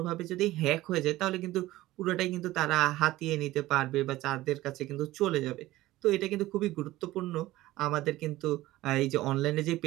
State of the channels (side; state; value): left; quieter; 16.9 dB